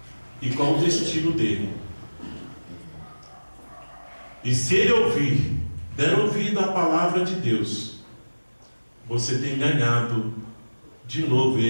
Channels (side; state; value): both; inverted; correlation -1.00